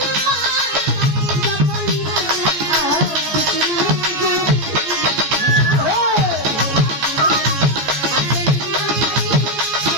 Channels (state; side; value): late; left; 14 ms